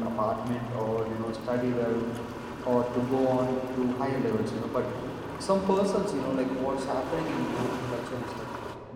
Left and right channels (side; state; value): both; identical; correlation 1.00